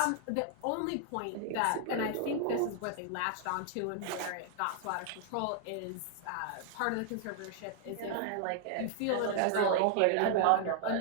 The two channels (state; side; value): different; both; correlation 0.00